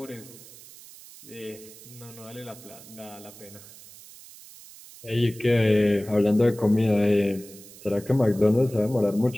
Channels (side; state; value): right; noise; hiss, 19 dB below the sound